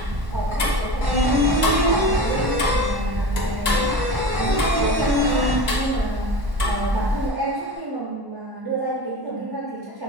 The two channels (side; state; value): left; late; 1.1 ms